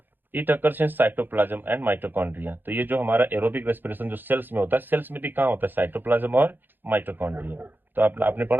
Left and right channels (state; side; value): late; left; 0.093 ms